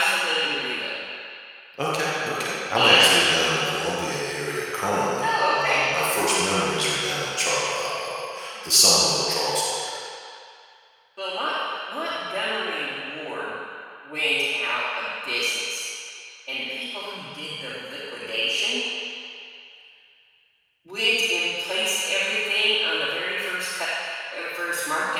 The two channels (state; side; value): identical; both; correlation 1.00